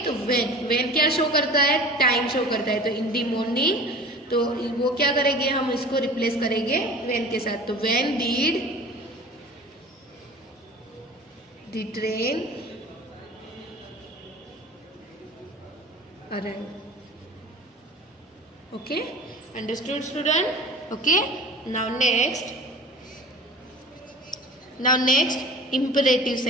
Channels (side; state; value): both; normal; correlation 0.41